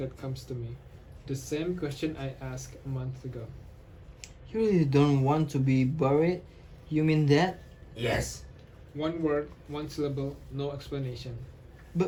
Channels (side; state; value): both; identical; correlation 1.00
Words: comes to me. The same question I asked a month ago. You really don't want to be buried? You mean that? Yes. One word, one syllable, no explanation.